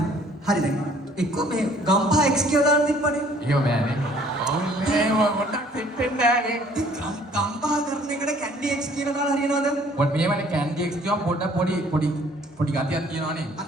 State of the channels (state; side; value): normal; both; correlation 0.58